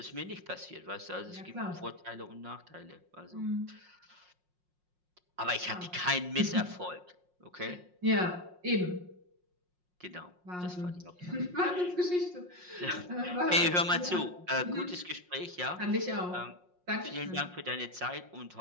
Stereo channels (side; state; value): left; late; 5.6 ms